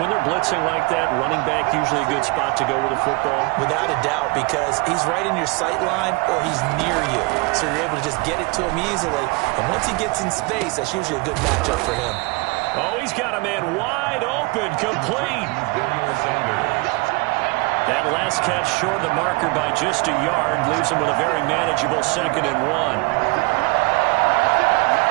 they're blitzing like that, running back usually a good spot to go with the football? Without a doubt, because he's right in your sight line or he's near you. So you're able to just get it to him easily. And once he gets in space, that's usually a good matchup for him. Oh, he's got a man wide open, complete. That last catch short of the marker by just a yard leaves him with a very manageable 2nd and 1.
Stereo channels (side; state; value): left; quieter; 27.1 dB